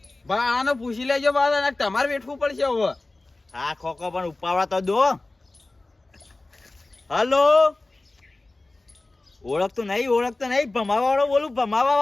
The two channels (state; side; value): quieter; right; 3.0 dB